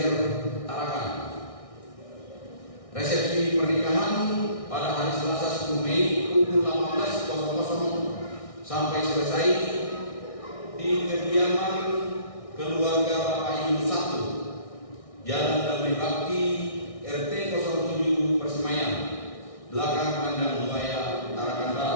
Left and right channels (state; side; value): late; right; 1.6 ms